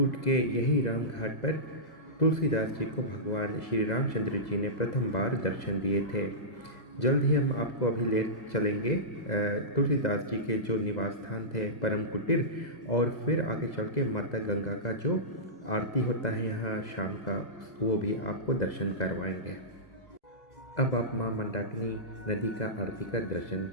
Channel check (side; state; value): right; late; 2.0 ms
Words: के यही राम घाट पर तुलसीदास जी को भगवान श्री रामचंद्र जी ने प्रथम बार दर्शन दिए थे। जल्द ही हम आपको अभी ले चलेंगे तुलसीदास जी के जो निवास स्थान थे परम कुटीर, और फिर आगे चल के माता गंगा का जो आरती होता है यहाँ शाम का, वो भी आपको दर्शन करवाएंगे। अब आप माँ मंदाकिनी नदी का आरती का दर्शन